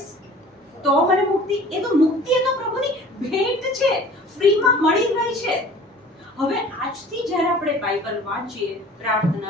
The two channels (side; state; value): both; normal; correlation 0.46